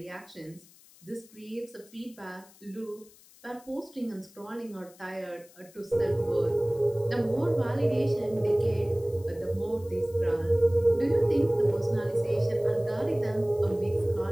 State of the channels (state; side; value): noise; left; hiss, 25 dB below the sound